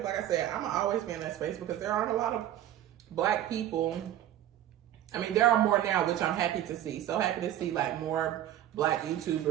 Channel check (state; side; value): quieter; left; 12.1 dB